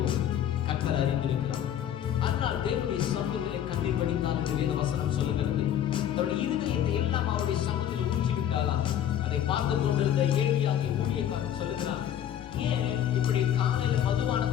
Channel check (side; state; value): right; quieter; 10.3 dB